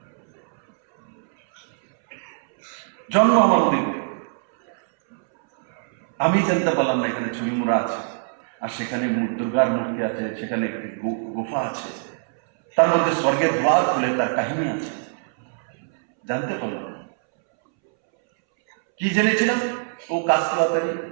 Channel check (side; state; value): left; silent; 63 dB below the other